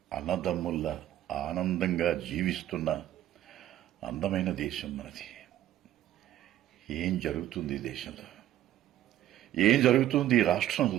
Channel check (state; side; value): quieter; left; 12.8 dB